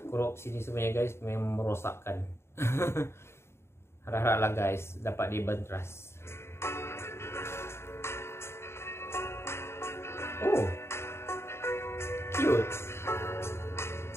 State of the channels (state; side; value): late; right; 0.12 ms